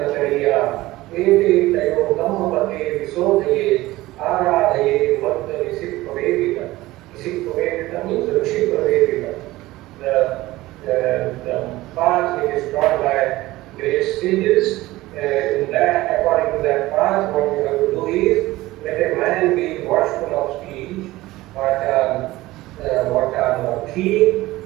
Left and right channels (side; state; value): left; quieter; 18.0 dB